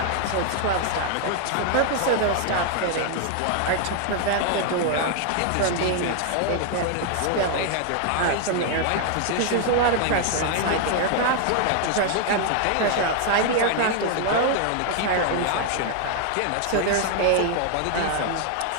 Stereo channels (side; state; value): both; different; correlation 0.00